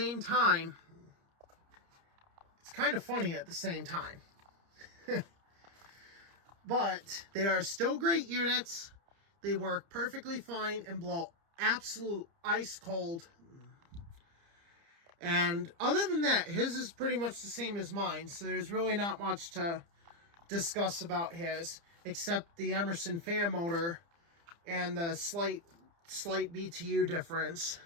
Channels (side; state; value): left; late; 30 ms